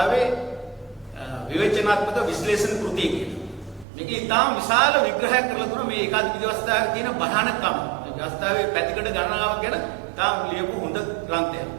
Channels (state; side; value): drops out; left; at 3.9 s